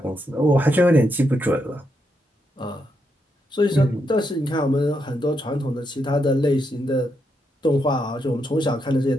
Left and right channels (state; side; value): normal; both; correlation 0.81